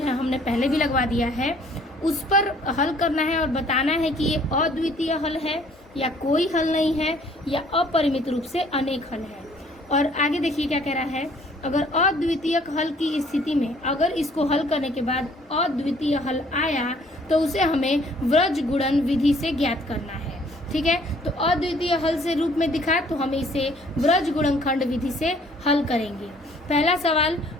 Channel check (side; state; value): both; normal; correlation 0.59